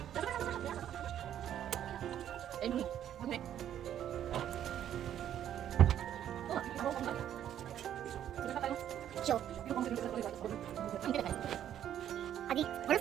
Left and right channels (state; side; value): quieter; left; 10.6 dB